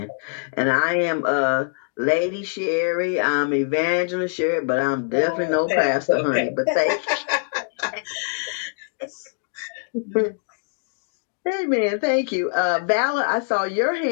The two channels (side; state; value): right; silent; digital silence